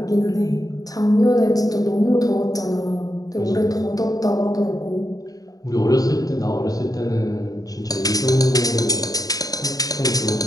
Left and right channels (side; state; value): right; late; 0.18 ms